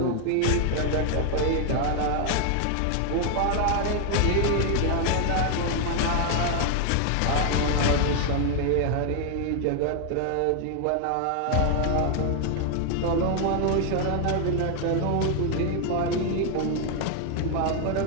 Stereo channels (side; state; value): both; different; correlation 0.00